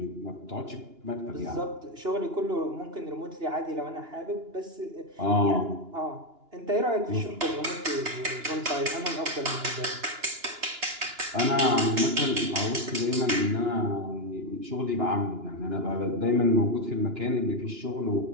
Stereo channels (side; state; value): left; late; 2.9 ms